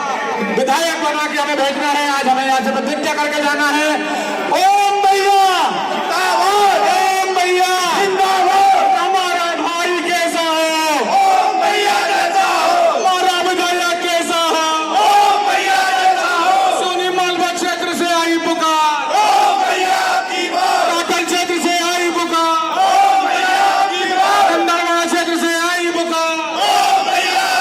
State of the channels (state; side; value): identical; both; correlation 1.00